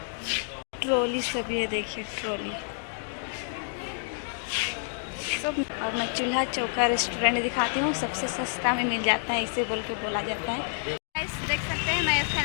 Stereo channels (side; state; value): right; silent; digital silence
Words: ट्रॉली सब ये देखिए ट्रॉली सब। और मैं चूल्हा चौका रेस्टोरेंट दिखाती हूँ, सबसे सस्ता में मिल जाता है, इसे बोल के बोला जाता है। देख सकते हैं मैं